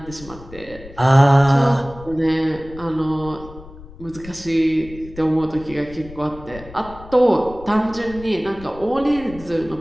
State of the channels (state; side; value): noise; left; rumble, 17 dB below the sound